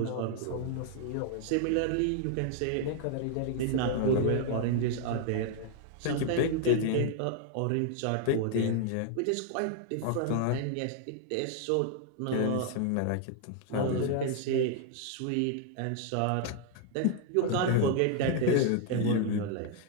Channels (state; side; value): different; both; correlation 0.00